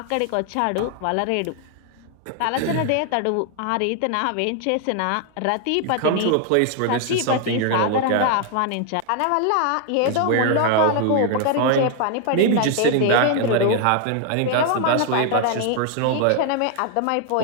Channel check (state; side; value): different; both; correlation 0.00